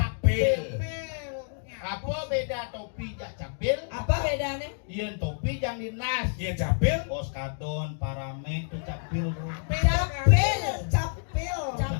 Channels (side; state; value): right; silent; digital silence